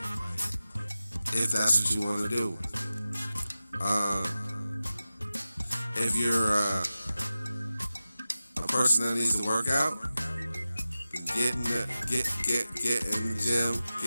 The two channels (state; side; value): inverted; both; correlation -0.95